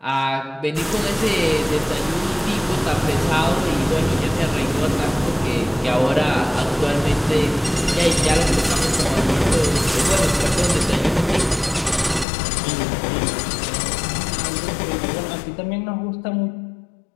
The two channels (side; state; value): right; drops out; at 12.2 s